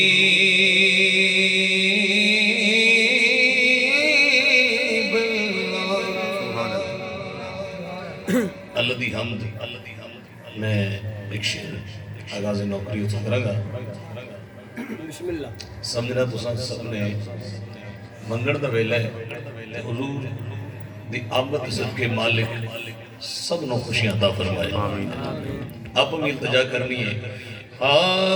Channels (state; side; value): identical; both; correlation 1.00